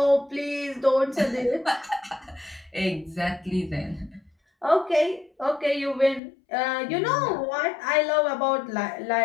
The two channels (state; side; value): drops out; right; at 6.2 s